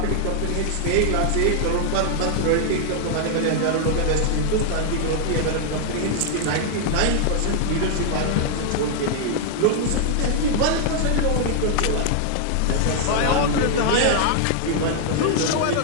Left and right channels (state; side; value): different; both; correlation 0.00